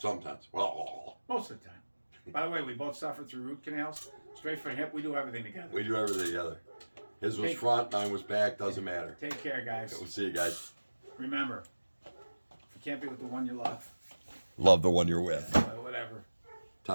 Well, most of the time. By the way, we both suffered through root canals. Straight for hip, we do everything together. We do everything together. His was front, mine was back, doesn't matter. Take care, guys. We'll see you guys. Remember, if you can't be with the one you love, love the one you're with. Whatever.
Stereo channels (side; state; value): both; inverted; correlation -1.00